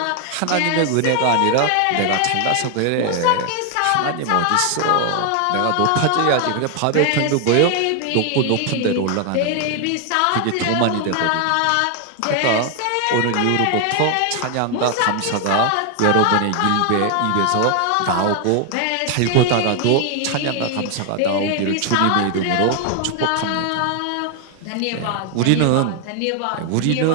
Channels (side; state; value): both; different; correlation 0.00